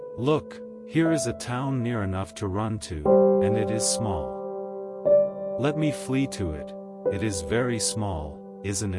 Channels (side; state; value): both; identical; correlation 1.00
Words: Look, here is a town near enough to run to, and it is small. Let me flee to it, it is very small, isn't